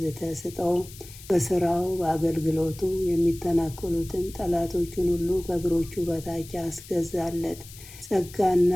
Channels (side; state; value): left; noise; hiss, 18 dB below the sound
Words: ስጠው። በስራው በአገልግሎቱ የሚተናከሉትን ጠላቶቹን ሁሉ ከእግሮቹ በታች አስገዛለት። ጸጋና